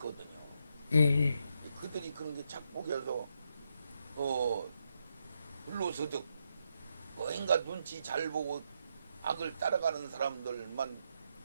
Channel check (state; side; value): inverted; both; correlation -0.80